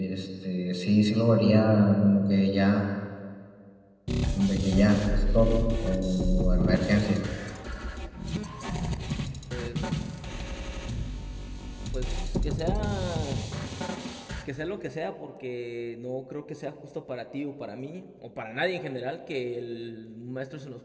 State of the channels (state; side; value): identical; both; correlation 1.00